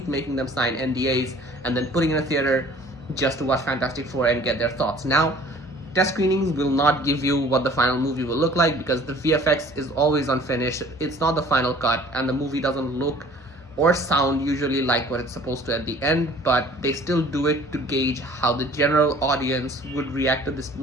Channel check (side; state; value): both; normal; correlation 0.51